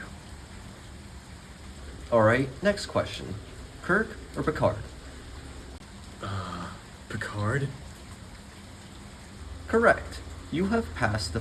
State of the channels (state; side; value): identical; both; correlation 1.00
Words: Alright, next question. Kirk or Picard? Picard? Correct. You have passed the